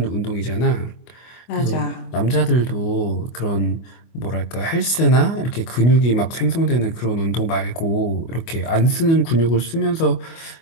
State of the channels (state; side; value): late; right; 24 ms